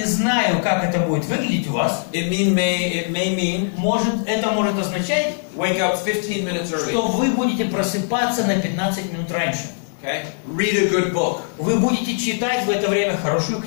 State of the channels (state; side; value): silent; right; digital silence